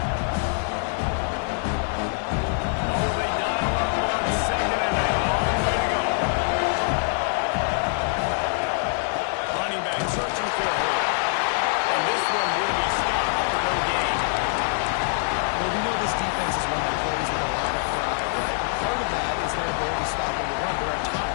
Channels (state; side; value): silent; right; 56 dB below the other